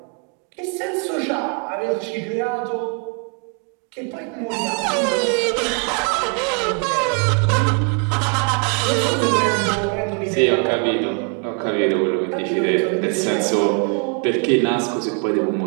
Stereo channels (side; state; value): left; quieter; 38.3 dB